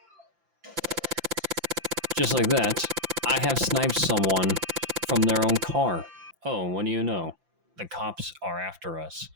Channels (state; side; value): late; left; 5.9 ms